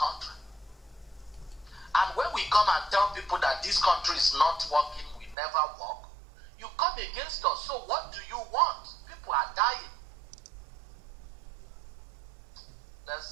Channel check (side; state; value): left; drops out; at 5.4 s